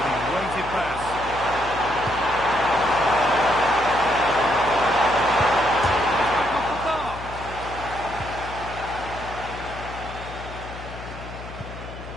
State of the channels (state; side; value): noise; left; hum, 13 dB below the sound